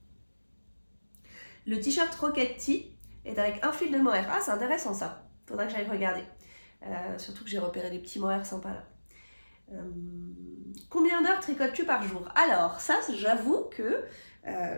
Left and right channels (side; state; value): both; inverted; correlation -1.00